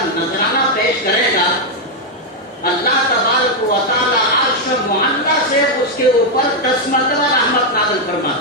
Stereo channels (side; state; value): both; normal; correlation 0.00